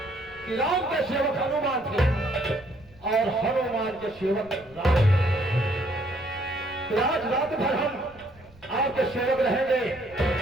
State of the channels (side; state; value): right; noise; rumble, 25 dB below the sound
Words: कि राम के सेवक हनुमान थे और हनुमान के सेवक राम। तो आज रात भर हम आपके सेवक रहेंगे